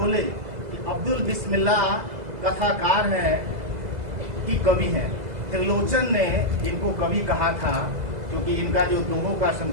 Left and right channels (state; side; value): late; left; 2.0 ms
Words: कि अब्दुल बिस्मिल्लाह कथाकार हैं कि कवि हैं। त्रिलोचन ने इनको कवि कहा था, क्योंकि इनका जो दोहों का